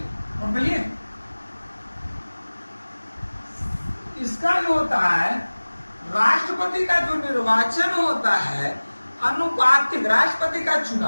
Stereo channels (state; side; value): inverted; both; correlation -1.00